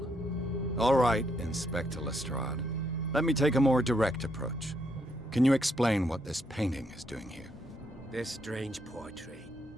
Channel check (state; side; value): normal; both; correlation 0.76